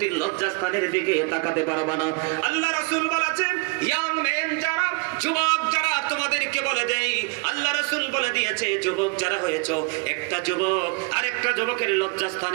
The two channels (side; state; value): left; quieter; 31.4 dB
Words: লজ্জাস্থানের দিকে তাকাতে পারবা না। আল্লাহ রাসূল বলেছেন, ইয়াং মেন যারা, যুবক যারা, তোমাদেরকে বলে দেই, আল্লাহ রাসূল বলে দিয়েছে, যুবক যারা হয়েছো, একটা যুবক আরেকটা যুবকের